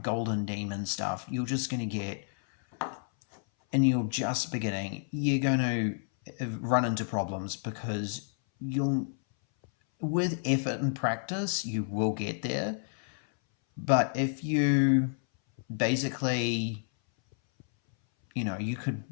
golden demon stuff, you're just going to get, and you're just beginning, you're going to run into problems because you'll, with effort and practice, you will get there. But if you basically, you could,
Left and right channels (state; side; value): silent; right; 58 dB below the other